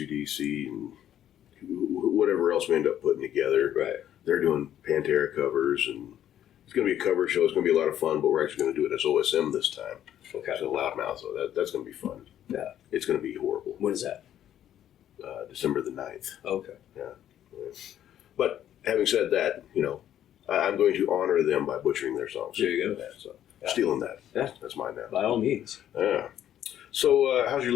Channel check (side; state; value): right; quieter; 11.0 dB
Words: and whatever else we end up putting together. Right. They're doing Pantera covers, and it's going to be a cover show. It's going to be a lot of fun, but we're actually going to do it as OSM this time. Okay. So Loudmouth, so that's going to be fun. Yeah. It's going to be horrible. When is that? December the 9th. Okay. Yeah. But having said that, I'm going to honor them by butchering their songs. There you go. So stealing that. Yeah. That's mine now. By all means. Yeah. So how's your